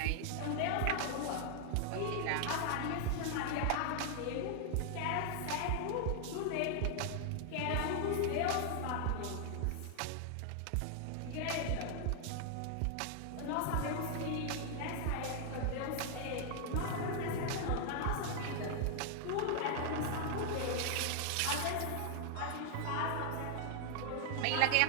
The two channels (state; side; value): different; both; correlation 0.00